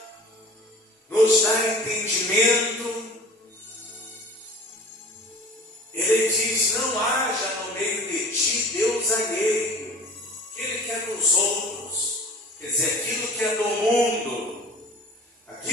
nos dá entendimento. Ele diz: não haja no meio de ti Deus alheio, que Ele quer dos outros, quer dizer, aquilo que é do mundo.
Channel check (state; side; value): normal; both; correlation 0.43